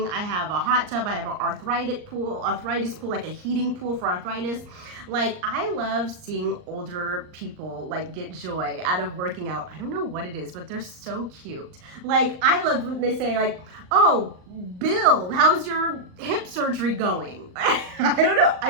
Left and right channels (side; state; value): left; late; 39 ms